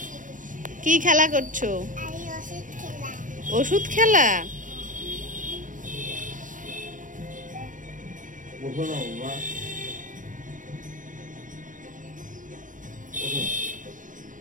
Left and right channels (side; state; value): left; late; 0.38 ms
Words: কি খেলা করছো? ওষুধ খেলা।